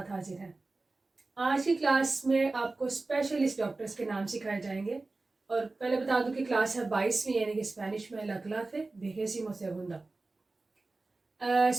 حاضر ہیں. آج کی کلاس میں آپ کو اسپیشلسٹ ڈاکٹرز کے نام سکھائے جائیں گے. اور پہلے بتا دوں کہ کلاس ہے 22ویں، یعنی کہ اسپینش میں لا clase vigésimo segunda.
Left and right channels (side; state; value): left; quieter; 3.4 dB